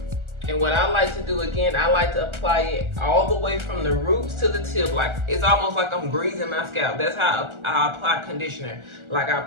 And what I like to do, again, I like to apply it all the way from the roots to the tip. Like, it's almost like I'm greasing my scalp. That's how I apply conditioner. Like, I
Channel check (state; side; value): late; left; 1.4 ms